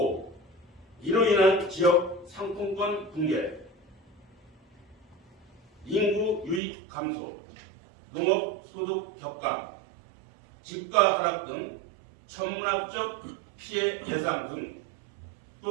이로 인한 지역 상품권 붕괴, 인구 유입 감소, 농업 소득 격감, 집가 하락 등 천문학적 피해 예상 등.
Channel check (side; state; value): left; drops out; at 6.6 s